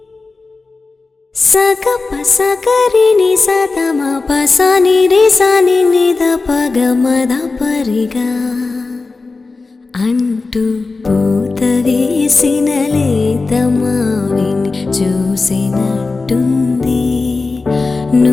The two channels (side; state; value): right; quieter; 3.9 dB